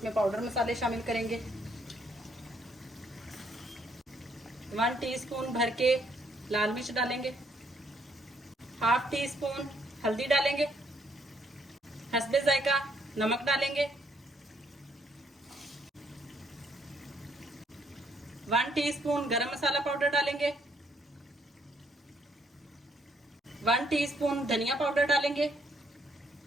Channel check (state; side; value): normal; both; correlation 0.70